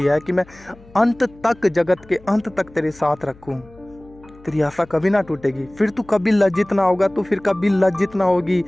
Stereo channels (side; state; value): left; noise; hum, 24 dB below the sound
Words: है कि मैं अंत तक, जगत के अंत तक तेरे साथ रखूँ। तेरी आशा कभी ना टूटेगी, फिर तू कभी लज्जित ना होगा, तू फिर कभी लज्जित ना होगी।